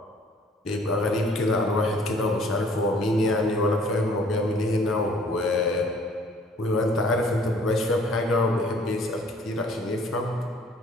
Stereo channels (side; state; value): both; normal; correlation 0.57